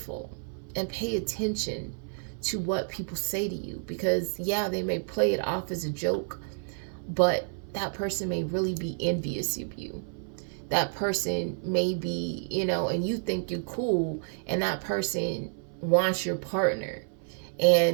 and pay attention to what people say to you, because yeah, they may play it off as a joke, but that person may really be envious of you. That person may be, and you think you're cool, and that person wants your partner.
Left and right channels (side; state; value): left; silent; 58 dB below the other